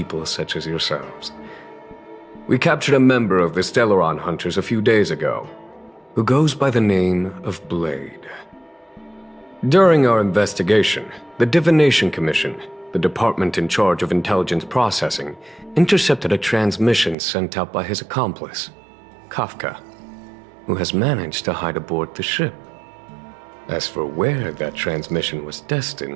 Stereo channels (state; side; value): drops out; left; at 17.2 s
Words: such as yourselves. We captured a member of the Stellaron Hunters a few days ago, who goes by the name of Blade. During our investigation, the Divination Commission, the department in charge of intelligence processing, intercepted a transmission sent out by his accomplice, Kafka, who has managed to hide aboard the ship. As for where that transmission was